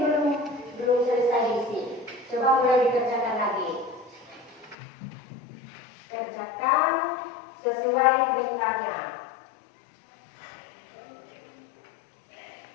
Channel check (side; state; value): right; drops out; at 4.8 s